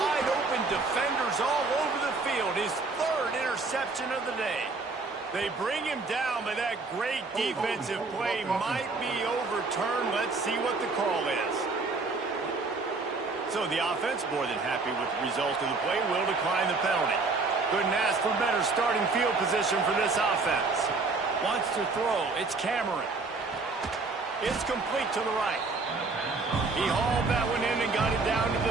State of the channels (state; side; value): quieter; left; 3.9 dB